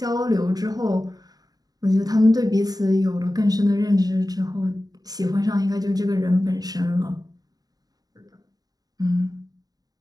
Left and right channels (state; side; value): late; left; 0.18 ms